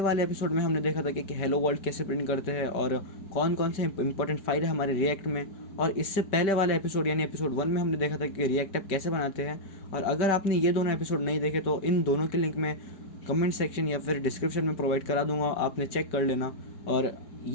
वाले एपिसोड में हमने देखा था कि हेलो वर्ल्ड कैसे प्रिंट करते हैं और कौन कौन से इंपॉर्टेंट फाइल है हमारे रिएक्ट में। और इससे पहले वाले एपिसोड यानी एपिसोड 1 में हमने देखा था कि रिएक्ट ऐप कैसे बनाते हैं। और अगर आपने ये दोनों एपिसोड नहीं देखे तो इन दोनों के लिंक मैं कमेंट सेक्शन या फिर डिस्क्रिप्शन में प्रोवाइड करा दूंगा, आपने चेक कर लेना। और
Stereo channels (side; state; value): right; late; 4.7 ms